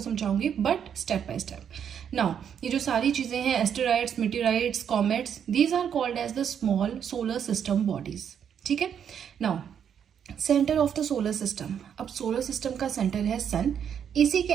समझाऊंगी, but step by step. Now ये जो सारी चीजें हैं, asteroids, meteorites, comets, these are called as the small solar system bodies, ठीक है। Now centre of the solar system, अब सोलर सिस्टम का सेंटर है सन, इसी के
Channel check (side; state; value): left; quieter; 8.3 dB